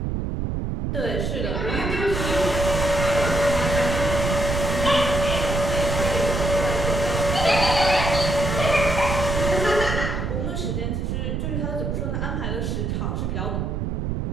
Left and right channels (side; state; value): right; noise; rumble, 1 dB below the sound